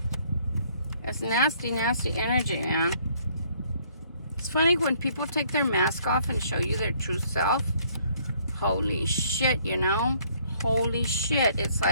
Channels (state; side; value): inverted; both; correlation -0.63